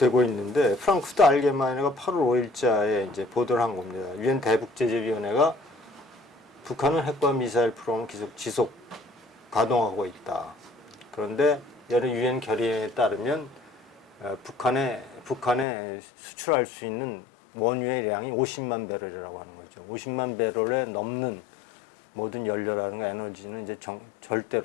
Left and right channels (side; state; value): right; drops out; at 15.7 s